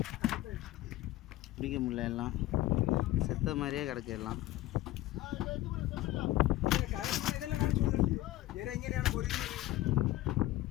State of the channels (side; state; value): right; quieter; 16.2 dB